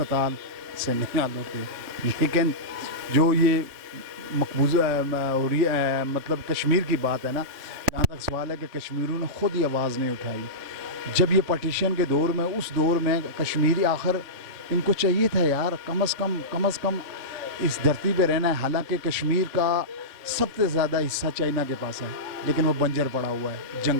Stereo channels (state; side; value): late; left; 3.6 ms